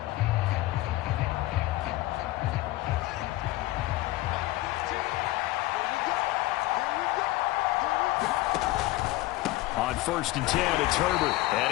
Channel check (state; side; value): quieter; right; 18.1 dB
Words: On 1st and 10, it's Herbert.